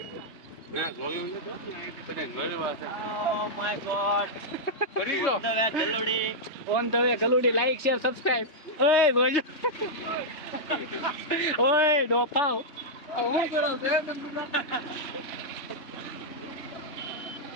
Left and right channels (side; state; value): right; late; 3.2 ms